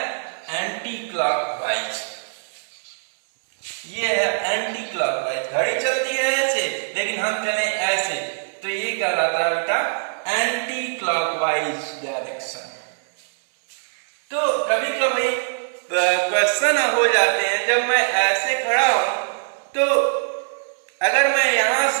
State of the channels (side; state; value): left; silent; 61 dB below the other